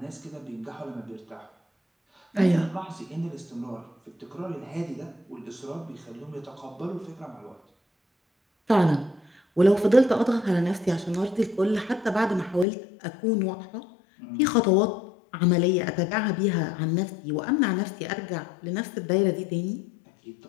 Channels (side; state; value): right; drops out; at 12.7 s